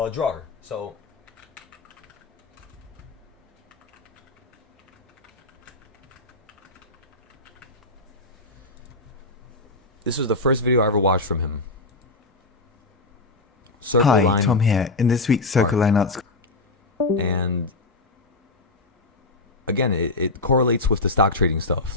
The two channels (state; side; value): quieter; right; 3.1 dB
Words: drawer. So this was the first video I ever watched from him. Circle Hi, line Tom here. In this week's Circle Line Arts. and again, it correlates with the stock trading stuff.